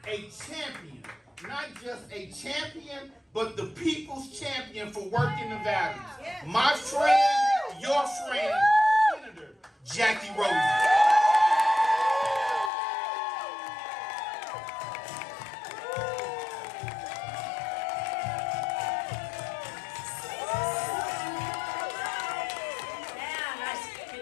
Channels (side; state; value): right; drops out; at 12.7 s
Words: a champion, not just a champion, but the people's champion for working Nevada. My friend, your friend, Senator Jacky Rosen.